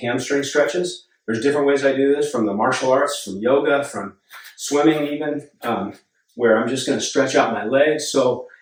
hamstring stretches. There's different ways I do this, from the martial arts, from yoga, from swimming even, where I'm just going to stretch out my legs. So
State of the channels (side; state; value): both; identical; correlation 1.00